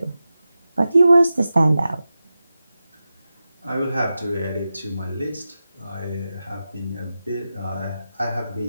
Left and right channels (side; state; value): both; inverted; correlation -0.93